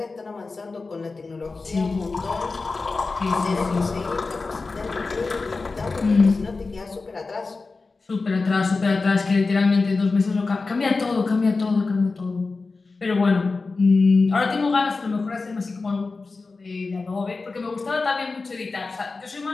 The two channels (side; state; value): right; quieter; 3.9 dB